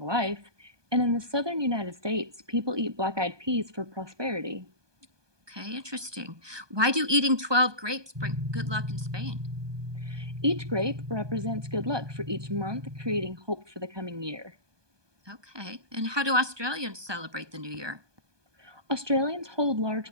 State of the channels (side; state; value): left; late; 1.2 ms